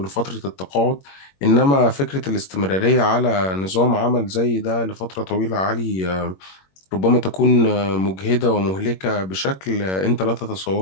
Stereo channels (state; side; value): late; right; 21 ms